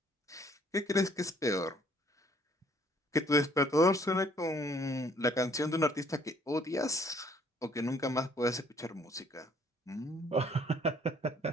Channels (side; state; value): both; normal; correlation 0.61